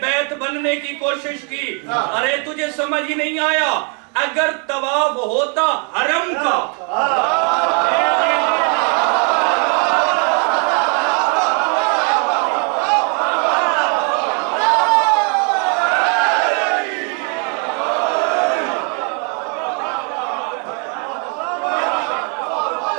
بیت بننے کی کوشش کی۔ ارے تجھے سمجھ ہی نہیں آیا، اگر طواف ہوتا حرم کا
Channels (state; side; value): quieter; left; 38.5 dB